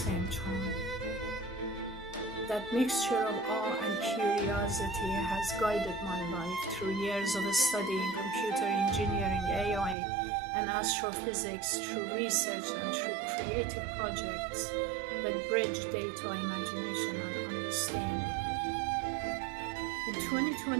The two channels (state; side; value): drops out; left; at 10.0 s